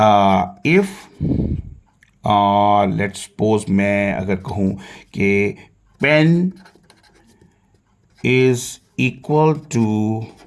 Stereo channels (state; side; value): identical; both; correlation 1.00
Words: इफ़ लेट्स सपोज मैं अगर कहूँ कि pen is equal to